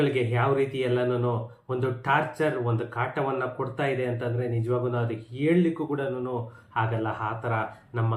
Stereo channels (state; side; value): identical; both; correlation 1.00